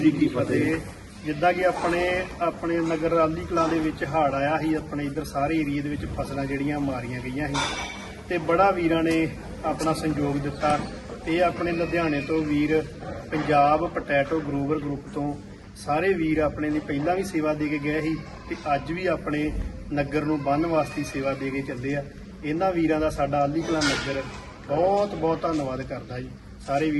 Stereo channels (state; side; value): identical; both; correlation 1.00